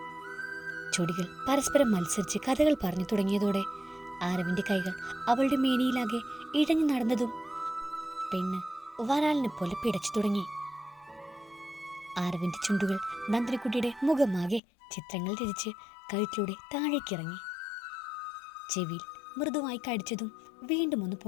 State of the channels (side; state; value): right; drops out; at 14.6 s